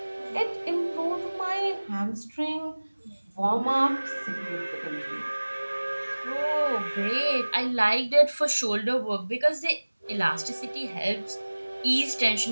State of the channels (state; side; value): inverted; both; correlation -1.00